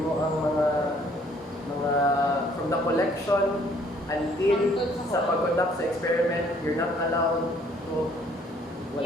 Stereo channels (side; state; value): both; normal; correlation 0.62